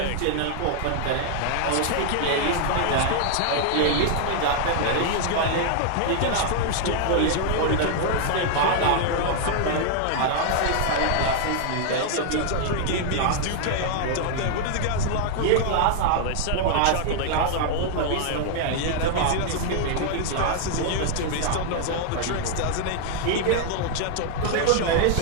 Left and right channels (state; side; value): different; both; correlation 0.00